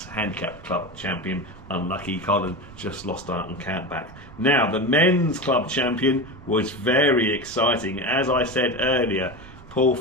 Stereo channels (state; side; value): noise; right; rumble, 20 dB below the sound